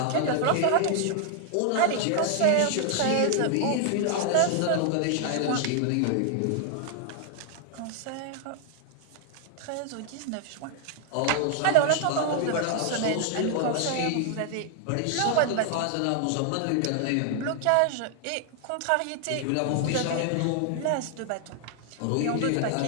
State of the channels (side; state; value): both; different; correlation 0.00